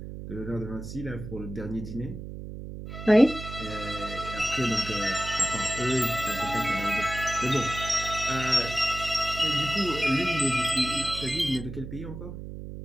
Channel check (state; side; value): noise; right; hum, 9 dB below the sound